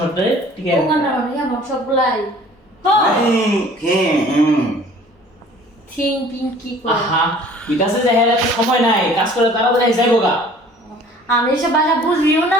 ঠিক আছে? ওখানে মানে আমার সবগুলাই থিং পিং কি করে আহা, বিকাশে যাই হেলে সময় নাই, কাজ করে তাড়াতাড়ি যাইবো গা। আমি এসব ভাষা বুঝবিও না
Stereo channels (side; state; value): both; normal; correlation 0.51